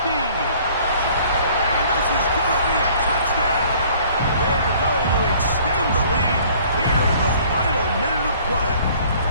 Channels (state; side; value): inverted; both; correlation -0.55